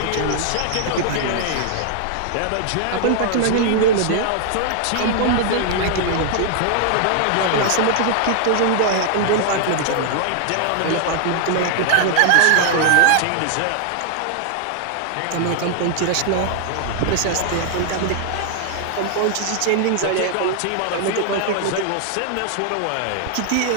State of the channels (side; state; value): both; different; correlation 0.00